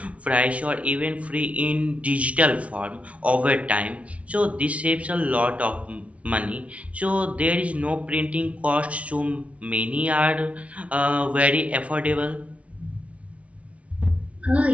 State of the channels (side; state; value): left; late; 0.064 ms